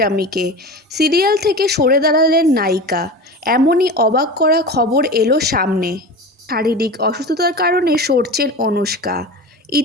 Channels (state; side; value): normal; both; correlation 0.30